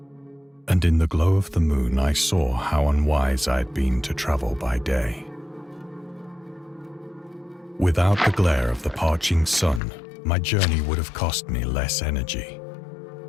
And in the glow of the moon I saw how unwise I had been to travel by day. Without the glare of the parching sun, my journey would have cost me less energy.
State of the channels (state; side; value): drops out; right; at 9.8 s